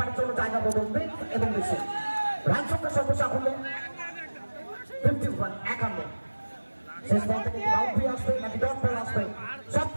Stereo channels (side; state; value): both; inverted; correlation -1.00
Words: জন্য জায়গা বদলবে এবং বেশি রান সংখ্যা সর্বসাফল্য 51 শেষ বল থেকে বাউন্ডারি আসবে নাকি ডট বল আসবে সব